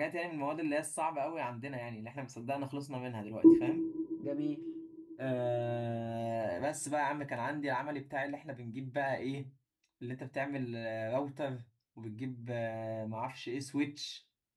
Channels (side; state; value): both; identical; correlation 1.00